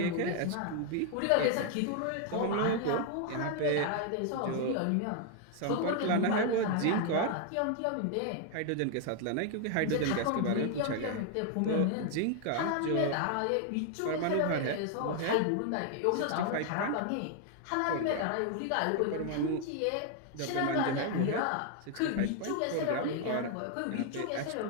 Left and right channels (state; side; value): different; both; correlation 0.00